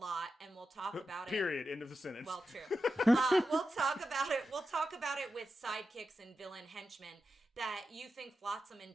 and we'll talk about Period. End of the sentence. Well, true. We'll talk about it. We'll talk about it with sidekicks and villain henchmen, that you think Flotsam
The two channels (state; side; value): normal; both; correlation 0.90